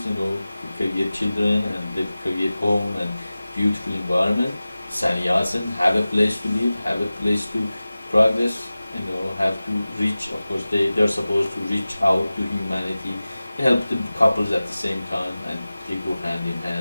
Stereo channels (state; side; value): inverted; both; correlation -0.97